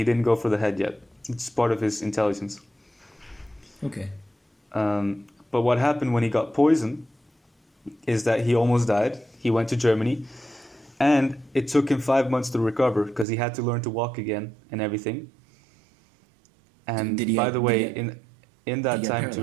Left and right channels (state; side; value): drops out; left; at 13.2 s